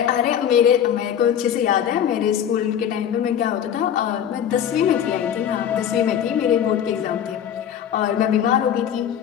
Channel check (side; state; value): right; quieter; 9.3 dB